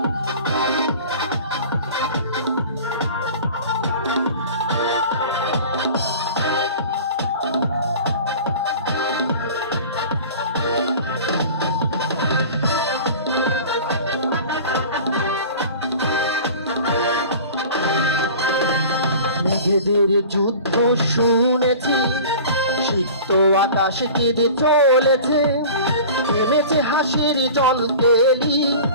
মেঘেদের যুদ্ধ শুনেছি, সিক্ত আকাশ কেঁদে চলেছে। থেমেছে হাসির জল কেলি,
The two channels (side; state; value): both; inverted; correlation -0.40